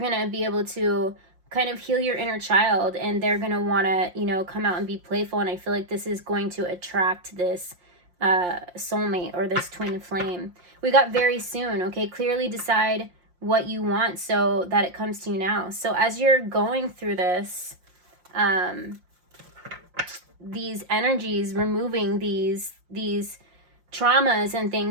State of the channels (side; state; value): left; late; 5.7 ms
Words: to be able to kind of heal your inner child, and they're going to want to, you know, come out and be playful. And I feel like this is going to attract this soulmate or this twin flame. We got very soon, okay? Clearly decide what you want so that it comes to you now. So as you're going through this, these energies, removing these traumas and